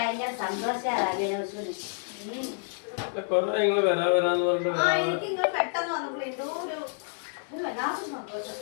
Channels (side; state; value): right; silent; 59 dB below the other